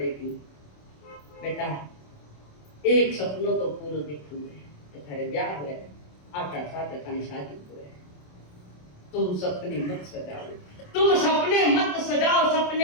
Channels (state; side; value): late; right; 27 ms